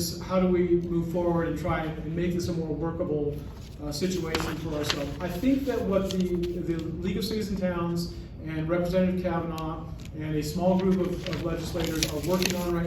how do we move forward and try and make this a more workable situation for ourselves? I think that what the League of Cities and Towns and Representative Kavanaugh and a small group of legislators are working on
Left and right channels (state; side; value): identical; both; correlation 1.00